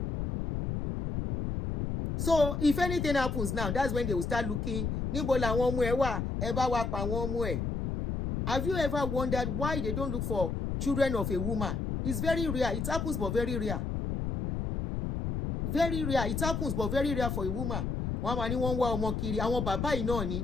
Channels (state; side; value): noise; left; rumble, 2 dB below the sound